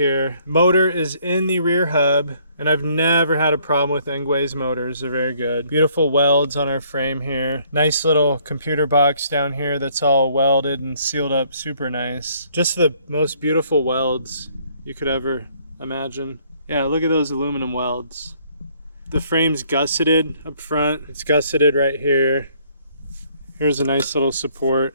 Motor is in the rear hub, and I've never had a problem with Engwe's motors. They're very good. Beautiful welds on our frame here. Nice little computer box down here that's all welded and sealed up super nice. Just the most beautiful welds you could ever imagine. Yeah, look at those aluminum welds. The frame's gusseted up front. It's gusseted right here. Here's a nice little support.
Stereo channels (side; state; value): both; inverted; correlation -0.64